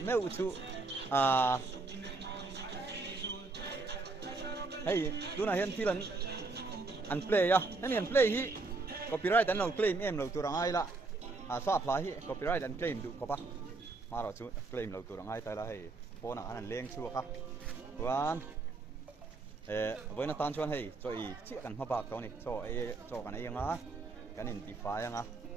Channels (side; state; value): left; quieter; 3.6 dB